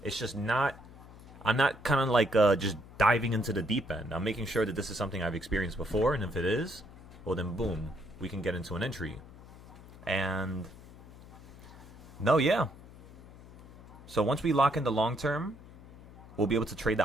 It's just not, I'm not kind of like just diving into the deep end. I'm making sure that this is something I've experienced before. And if it is, well then boom, we can get into an entry. And no, yeah. So once we lock in the long term, we'll be able to trade the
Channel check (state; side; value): noise; left; hum, 19 dB below the sound